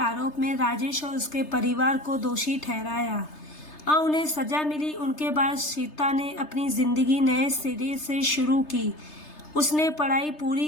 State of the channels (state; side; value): late; right; 3.3 ms